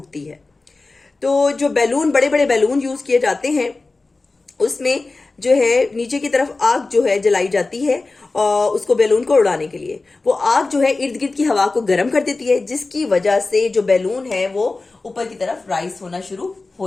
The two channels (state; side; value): quieter; right; 3.5 dB